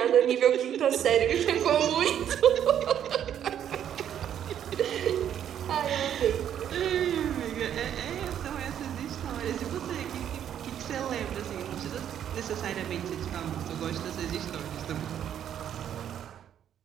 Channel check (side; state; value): left; quieter; 9.8 dB